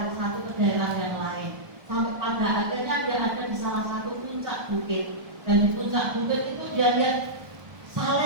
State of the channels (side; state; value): left; late; 1.2 ms